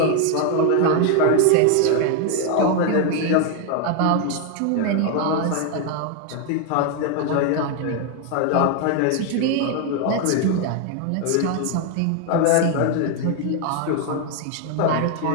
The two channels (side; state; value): both; different; correlation 0.01